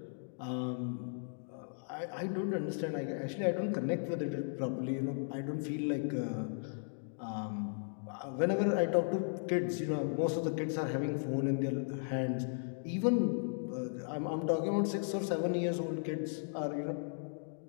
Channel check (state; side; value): silent; right; digital silence